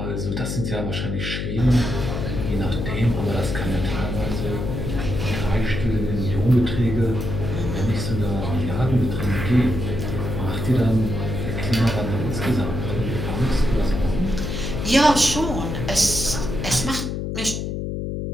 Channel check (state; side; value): noise; left; hum, 3 dB below the sound